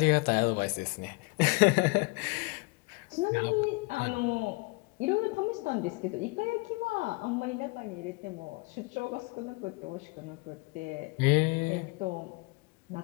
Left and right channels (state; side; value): quieter; right; 27.3 dB